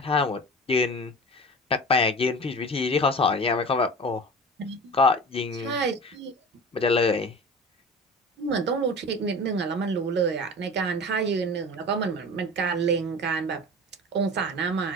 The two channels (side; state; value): both; normal; correlation 0.36